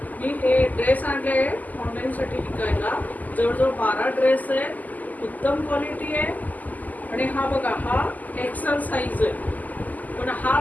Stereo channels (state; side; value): late; right; 0.081 ms